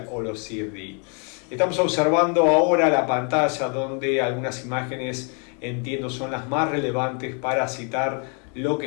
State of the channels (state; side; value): quieter; right; 38.2 dB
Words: o los CFD. Estamos observando ahora la pantalla donde algunas imágenes, entiendo, son las más relevantes para citar lo que